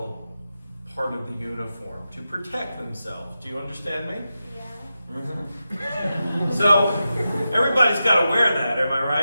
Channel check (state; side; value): inverted; both; correlation -0.90